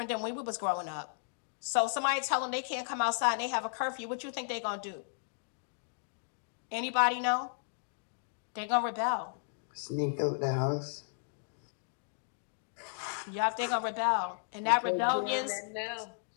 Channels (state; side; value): silent; right; digital silence